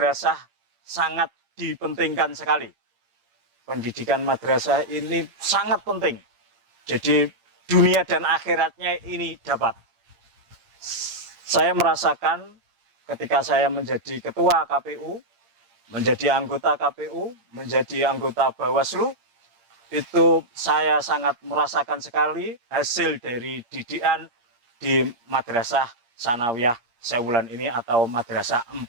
sangat dipentingkan sekali. Pendidikan madrasah ini sangat penting. Jadi dunia dan akhiratnya ini dapat. Saya merasakan ketika saya menjadi ketua KPU, menjadi anggota KPU, menjadi anggota Bawaslu, itu saya sangat merasakan sekali hasil dari didikan di Madrasah Sanawiyah Sewulan ini atau Madrasah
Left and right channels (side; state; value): left; late; 8.6 ms